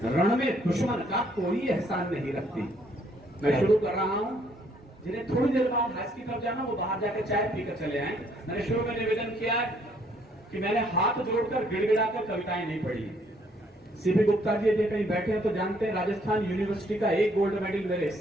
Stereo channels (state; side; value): normal; both; correlation 0.66